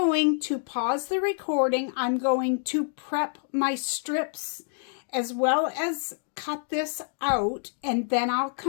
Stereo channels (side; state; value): right; silent; digital silence